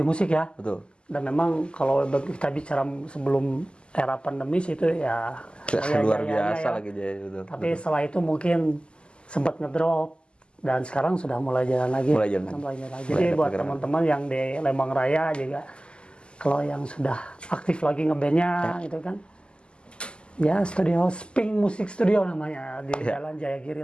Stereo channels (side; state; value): right; late; 0.050 ms